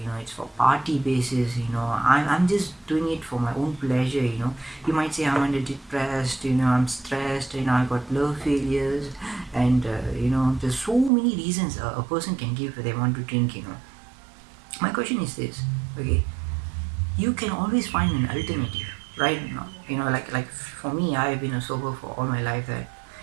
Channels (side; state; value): left; drops out; at 11.1 s